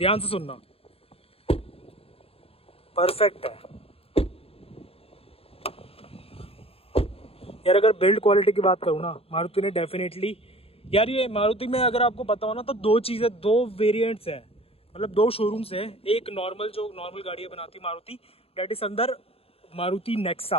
से सुनना, परफेक्ट है यार। अगर बिल्ड क्वालिटी की बात करूँ ना, मारुति ने डेफिनेटली यार, ये मारुति में अगर आपको पता हो ना तो दो वेरिएंट्स है, मतलब दो शोरूम्स है। एक नॉर्मल जो नॉर्मल गाड़ियाँ बनाती मारुति, डेट इज अंदर Maruti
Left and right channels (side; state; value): right; late; 0.28 ms